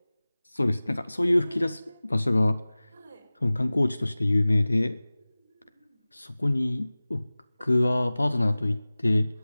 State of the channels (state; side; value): inverted; both; correlation -0.99